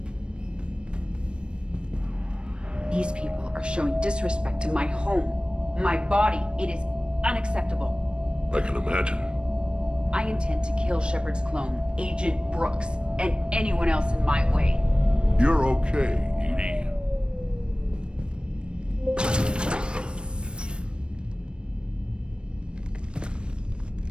These people are showing disrespect to my home, my body. It is unacceptable. I can imagine. I intend to kill Shepard's clone, Agent Brooks, and anyone else in my way. You're okay, Edie.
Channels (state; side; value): late; left; 0.055 ms